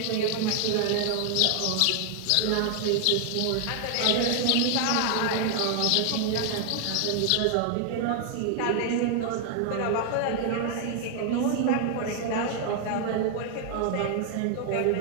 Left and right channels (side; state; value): both; different; correlation 0.00